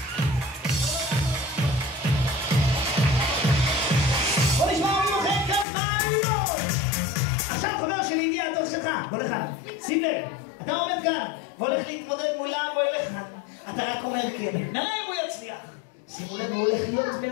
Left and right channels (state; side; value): drops out; right; at 5.7 s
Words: בוא נשמע ממוחד כפיים! עכשיו חבר שלי הגיע התור שלך, בוא לכאן. שים לב, אתה עומד כאן והולך להתמודד מולם, בואי לכאן. אתה רק אומר כן, נראה אם הוא יצליח. שימו לב, הוא הולך להיות